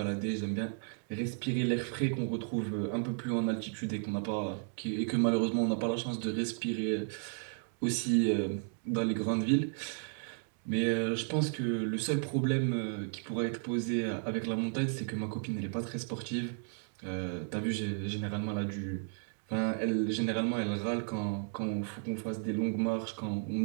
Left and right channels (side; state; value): left; silent; 55 dB below the other